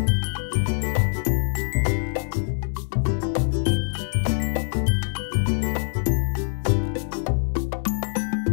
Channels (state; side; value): silent; right; digital silence